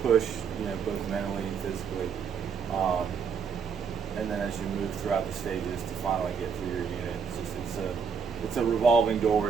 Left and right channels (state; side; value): quieter; left; 6.3 dB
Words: push, both mentally and physically. And then as you move throughout the stages to finally get through your unit, it's a revolving door.